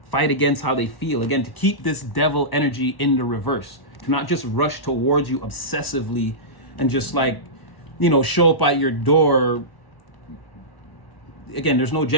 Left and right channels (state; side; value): late; right; 1.0 ms